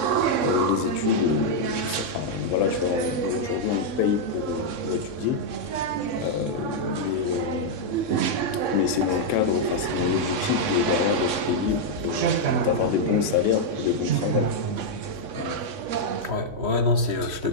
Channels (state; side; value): late; left; 3.6 ms